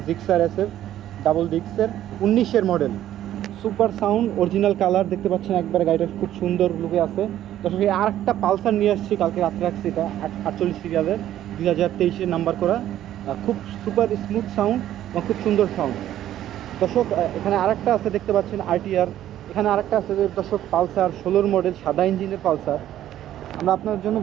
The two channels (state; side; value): quieter; left; 12.3 dB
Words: জিক্সার এসএফ ডাবল ডিস্কের 19-এর model. Super sound, original colour দেখতে পাচ্ছেন, একবারে গাড়িটা খুব সুন্দর লুকে আছে। দর্শক, এই আরেকটা পালসার নিয়ে আসছি, কালকে রাত্রে রাখছি। এটা 48 সিরিয়ালের, 2023-এর নাম্বার করা। খুব সুপার স্মুথ সাউন্ড এবং খুব সুন্দর সাউন্ড। দর্শক, এখানে আরেকটা আছে দেখতে পাচ্ছেন আরটিআর। এখানে আরেকটা আছে দর্শক, পালসার 16 মডেল, সাদা ইঞ্জিনের পালসার। আমরা আপনার জন্য